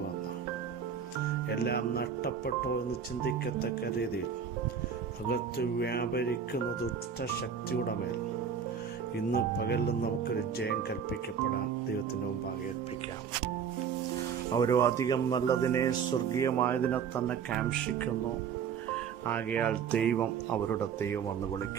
എല്ലാം നഷ്ടപ്പെട്ടോ എന്ന് ചിന്തിക്കത്തക്ക രീതിയിൽ അകത്ത് വ്യാപരിക്കുന്ന ദുഷ്ടശക്തിയുടെ മേൽ ഇന്ന് പകലിലും നമുക്കൊരു ജയം കൽപ്പിക്കപ്പെടാൻ ദൈവത്തിൻ്റെ മുമ്പാകെ ഏൽപ്പിക്കാം. അവരോ അധികം നല്ലതിനെ സ്വർഗീയമായതിനെ തന്നെ കാംക്ഷിക്കുന്നു. ആകയാൽ ദൈവം അവരുടെ ദൈവം എന്ന്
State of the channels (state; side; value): quieter; left; 7.1 dB